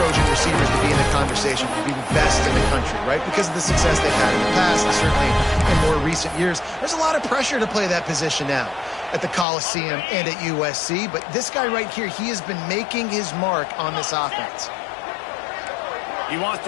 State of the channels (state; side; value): drops out; right; at 9.5 s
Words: receivers to be in the conversation for being best in the country, right? Because of the success they've had in the past and certainly in more recent years. There's a lot of pressure to play that position now at the Coliseum and at USC. But this guy right here, he has been making his mark on this offense. He wants